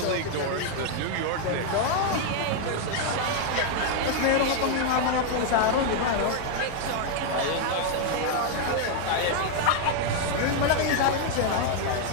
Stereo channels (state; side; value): different; both; correlation 0.00